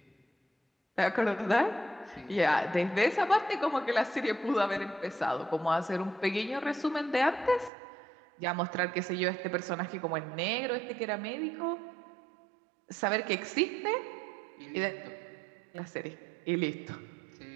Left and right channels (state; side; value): drops out; left; at 7.7 s